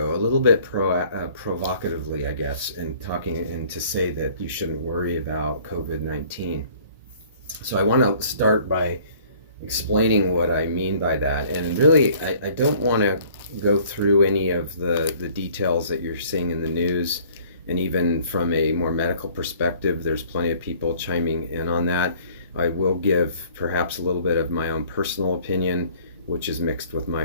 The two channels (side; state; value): both; inverted; correlation -0.54